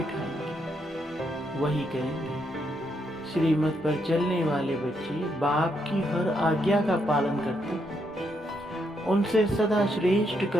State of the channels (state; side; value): normal; both; correlation 0.78